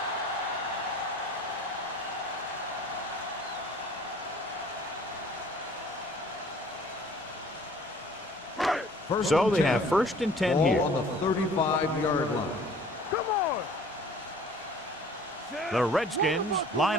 So they have 1st and 10 here. Ball on the 35-yard line. Come on. The Redskins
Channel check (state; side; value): normal; both; correlation 0.51